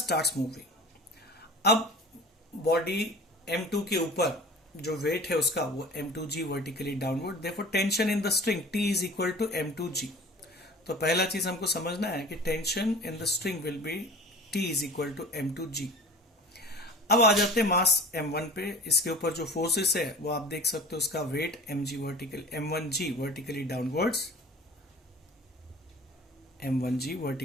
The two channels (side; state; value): both; normal; correlation 0.41